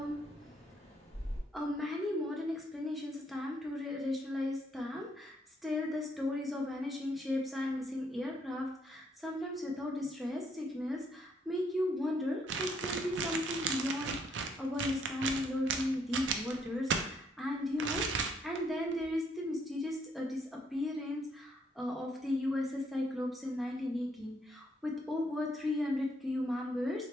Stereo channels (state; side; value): normal; both; correlation 0.71